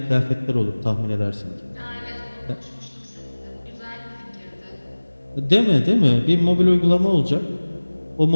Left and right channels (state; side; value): inverted; both; correlation -1.00